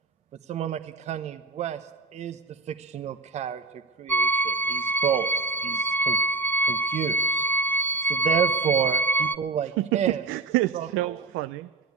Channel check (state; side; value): quieter; left; 4.5 dB